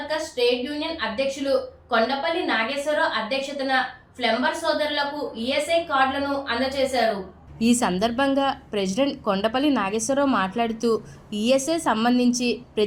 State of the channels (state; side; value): identical; both; correlation 1.00